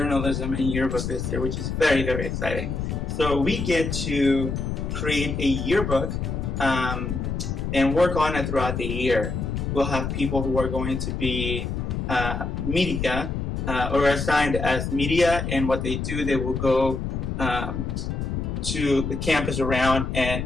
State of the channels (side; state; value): left; noise; rumble, 3 dB below the sound